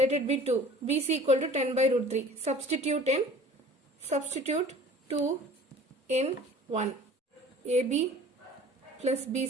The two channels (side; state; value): both; normal; correlation 0.46